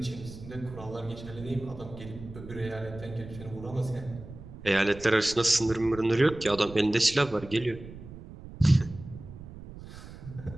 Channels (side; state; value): right; noise; rumble, 14 dB below the sound